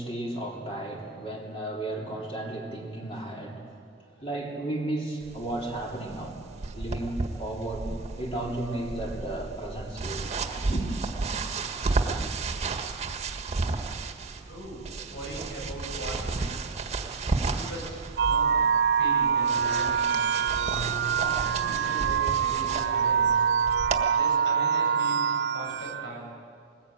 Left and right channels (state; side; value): quieter; left; 5.2 dB